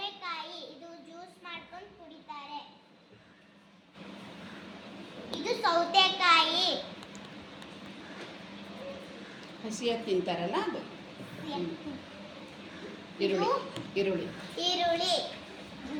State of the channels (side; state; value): both; identical; correlation 1.00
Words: ಇದು ಜ್ಯೂಸ್ ಮಾಡ್ಕೊಂಡು ಕುಡಿತಾರೆ. ಇದು ಸೌತೆಕಾಯಿ, ಹಸಿಯಾಗಿ ತಿಂತಾರಲ್ಲ ಅದು. ಈರುಳ್ಳಿ